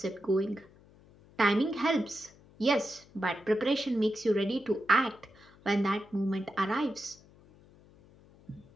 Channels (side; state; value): left; noise; hum, 26 dB below the sound